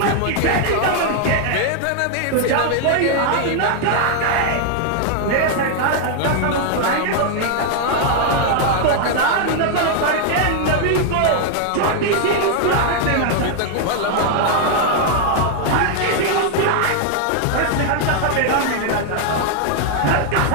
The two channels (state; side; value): different; both; correlation 0.00